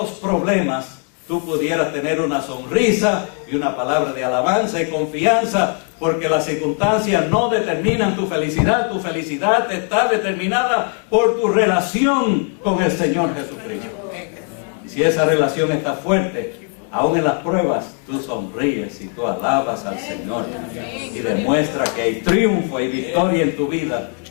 problemas tú pudieras tener una sonrisa y una palabra de alabanza y confianza, porque las circunstancias no determinan tu felicidad está determinada por tu relación con el Señor Jesucristo. Y si esa relación está fuerte, aún en las pruebas, tú sonríes y tú alabas al Señor y demuestra que hay triunfo y victoria en tu vida,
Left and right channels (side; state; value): right; quieter; 38.7 dB